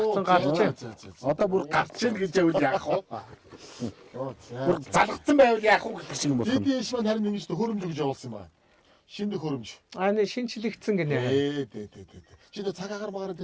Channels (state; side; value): identical; both; correlation 1.00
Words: гарч. Одоо бүр гарч ийн гэж явал яах вэ? Бүр За. залгацсан байвал яах вэ гэх шиг юм байна. Дидиш маань харин ингэж хөрөмж гэж явуулсан юм байна. Шинэ хөрөмж. Аа шинчлэгдсэн гинэ. Дээ. Чиний цаг агаар магаар